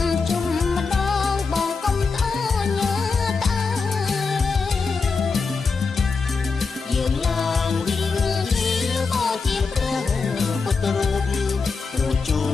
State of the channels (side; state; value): right; quieter; 4.7 dB